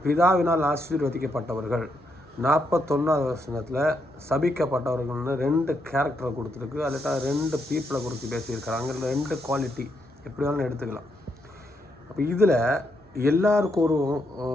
பிதாவினால் ஆசீர்வதிக்கப்பட்டவர்கள், 41வது வசனத்தில் சபிக்கப்பட்டவர்கள்னு 2 கேரக்டரை கொடுத்துருக்கு. அதில் 2 பீப்புளை குறித்து பேசியிருக்கிறாங்க. 2 குவாலிட்டி எப்படி வேணாலும் எடுத்துக்கலாம். அப்போ இதில் எல்லாருக்கும்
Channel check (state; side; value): normal; both; correlation 0.79